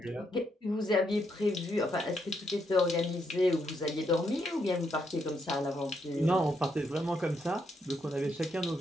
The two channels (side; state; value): both; normal; correlation 0.77